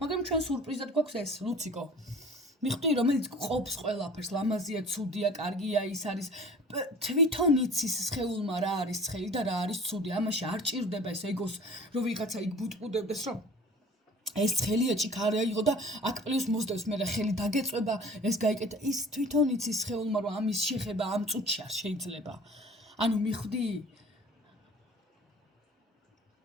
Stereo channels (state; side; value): normal; both; correlation 0.45